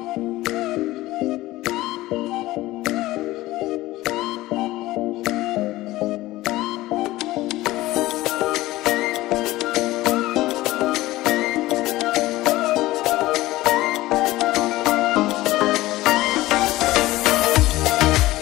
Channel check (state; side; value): quieter; right; 17.6 dB